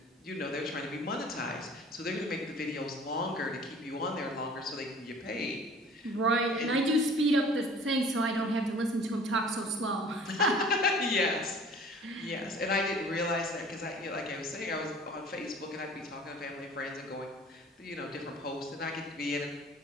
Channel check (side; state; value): both; normal; correlation 0.48